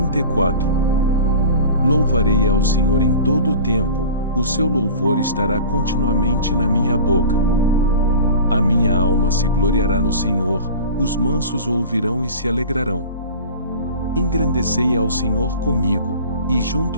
Louvarei ao Senhor em todo o tempo, o seu louvor estará continuamente na minha boca. A minha alma se gloriará no Senhor, os mansos o ouvirão e se alegrarão. Engrandecei ao Senhor comigo, e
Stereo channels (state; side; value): inverted; both; correlation -0.37